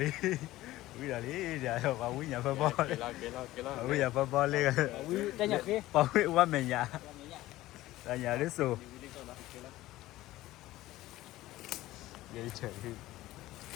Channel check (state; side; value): quieter; right; 16.5 dB